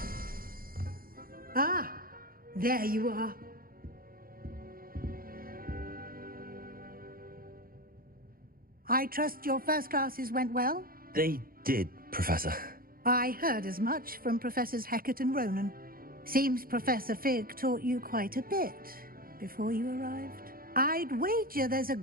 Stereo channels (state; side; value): late; left; 0.42 ms